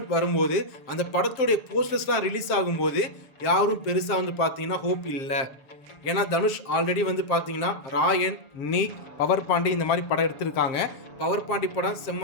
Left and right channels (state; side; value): late; right; 7.1 ms